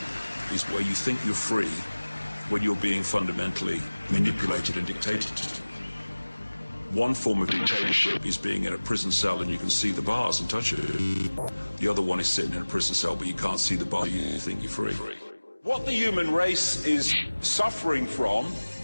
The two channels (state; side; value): inverted; both; correlation -1.00